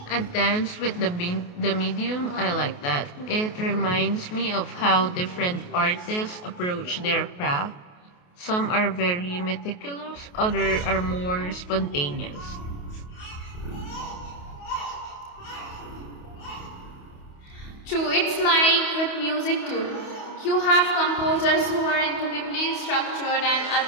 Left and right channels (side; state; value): right; late; 28 ms